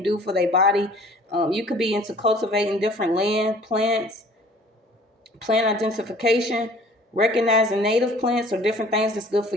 do for their body. You could be into cultivating different land, plants, plant identification, recognizing native plants or different things that's good for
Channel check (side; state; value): both; normal; correlation 0.51